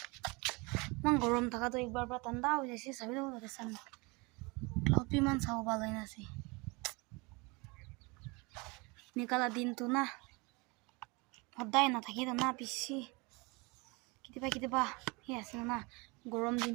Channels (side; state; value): left; quieter; 27.2 dB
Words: মান গরম থাকা তো একবার পুরা ঠান্ডা হয়ে যাচ্ছে সবি তো দেখছেন ক্লাউড भी মান চাও ভালো নাছি নিকালা দিন তো না সদায় না থাকি তো না বেশি কেতিয়াবা হে আছে না গরম দিন